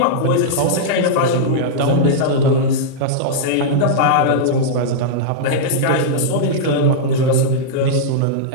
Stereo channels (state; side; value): different; both; correlation -0.03